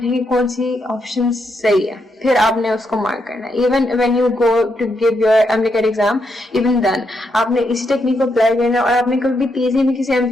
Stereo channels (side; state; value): both; normal; correlation 0.80